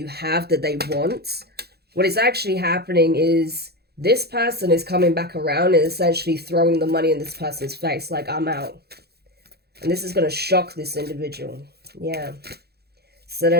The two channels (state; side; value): late; left; 0.47 ms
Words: have that they want, what is actually happening is this person is coming back around and essentially throwing the money in this person's face, like, I'm out. And this is going to shock this individual. Yeah. So